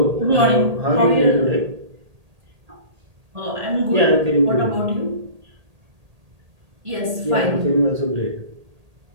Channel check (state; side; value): late; left; 1.8 ms